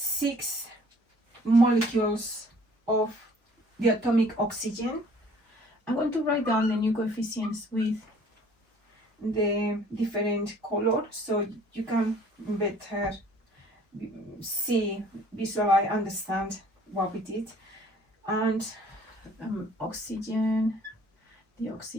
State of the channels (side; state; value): both; normal; correlation 0.55